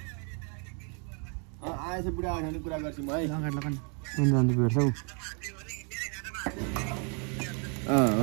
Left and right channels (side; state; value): left; quieter; 38.3 dB